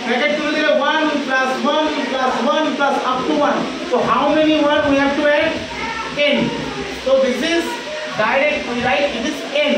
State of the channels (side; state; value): both; identical; correlation 1.00